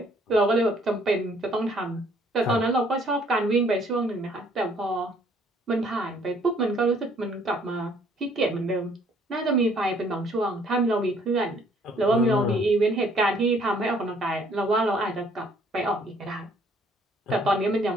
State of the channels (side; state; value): both; normal; correlation 0.62